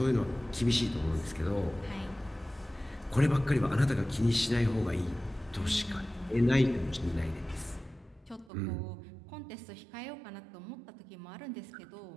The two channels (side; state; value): left; drops out; at 8.5 s